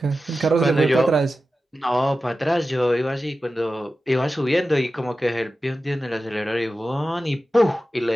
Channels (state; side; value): normal; both; correlation 0.93